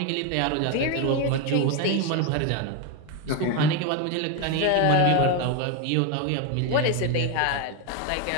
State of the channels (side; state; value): both; different; correlation 0.02